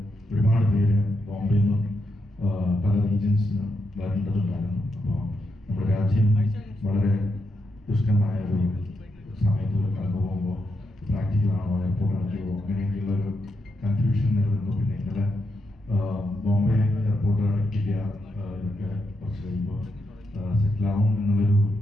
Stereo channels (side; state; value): both; normal; correlation 0.83